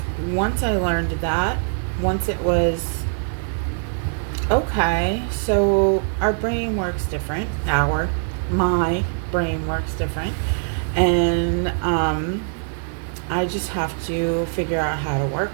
once I learned that, once it was, okay, so our brain works different. My brain works different. And I just have to figure out how to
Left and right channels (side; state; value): left; silent; 63 dB below the other